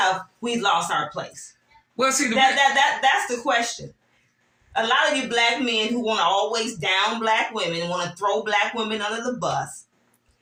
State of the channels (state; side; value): identical; both; correlation 1.00